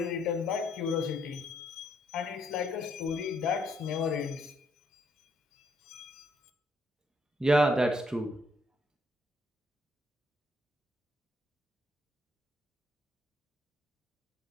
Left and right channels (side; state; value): both; normal; correlation 0.72